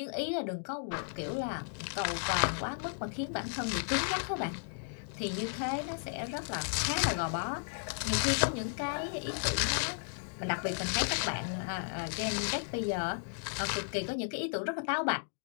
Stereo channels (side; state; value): right; silent; digital silence